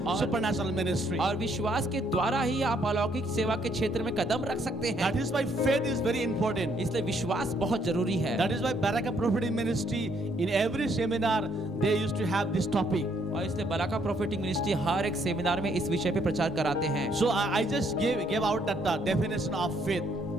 supernatural ministry. और विश्वास के द्वारा ही आप अलौकिक सेवा के क्षेत्र में कदम रख सकते हैं। That is why faith is very important. इसलिए विश्वास बहुत जरूरी है। That is why Baraka Prophetic Ministry, in every seminar, they used to have this topic. और इसलिए बराका प्रोफेटिक मिनिस्ट्री हर एक सेमिनार में इस विषय पे प्रचार कराते हैं। So I just gave out that definition of faith.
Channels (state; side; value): normal; both; correlation 0.69